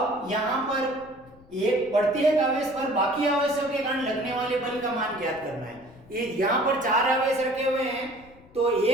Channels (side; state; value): left; noise; rumble, 25 dB below the sound